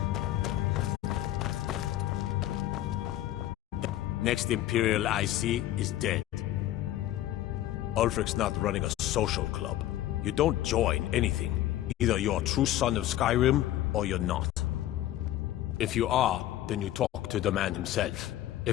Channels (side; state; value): right; quieter; 13.8 dB